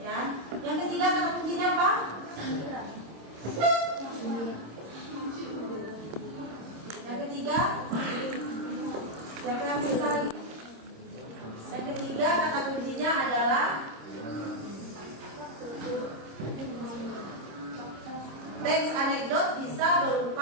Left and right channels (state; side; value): late; left; 26 ms